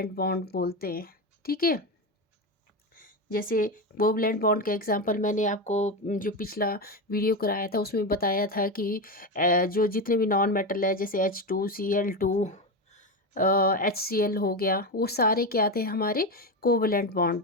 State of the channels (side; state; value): both; normal; correlation 0.15